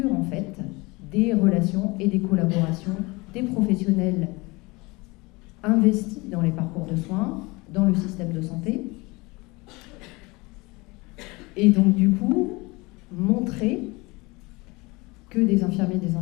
en fait des relations et des collaborations des professionnels investis dans les parcours de soins, dans le système de santé, et donc du coup montrer que des infirmiers et des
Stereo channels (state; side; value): quieter; right; 24.4 dB